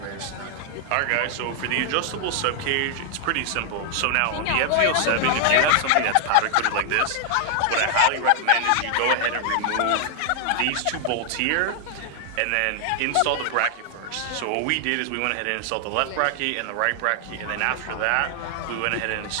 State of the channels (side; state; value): both; different; correlation 0.00